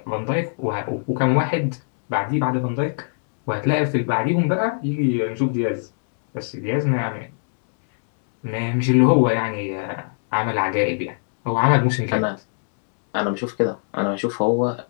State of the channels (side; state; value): right; silent; digital silence